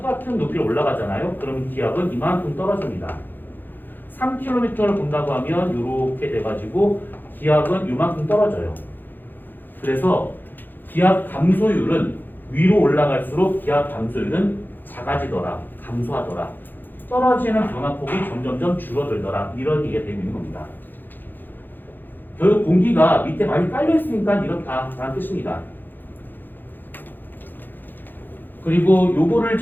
높이로 올라가잖아요. 그럼 기압은 이만큼 떨어집니다. 3km를 본다고 하면 이렇게 돼가지고 기압은 이만큼 떨어져요. 그래서 기압 감소율은 위로 올라갈수록 기압 감소율은 작아지더라, 감소하더라. 떨어지는 변화폭이 점점점 줄어들더라. 이런 얘기가 되고 있는 겁니다. 결국 공기가 밑에 많이 깔려 있으니까 이렇다라는 뜻입니다. 그리고 요거를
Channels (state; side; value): late; right; 0.090 ms